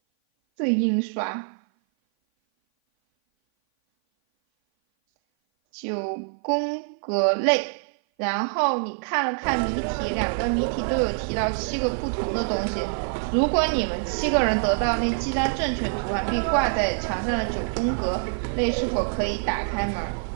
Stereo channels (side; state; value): left; silent; 57 dB below the other